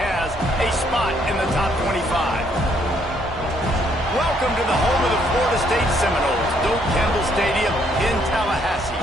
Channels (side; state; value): both; normal; correlation 0.69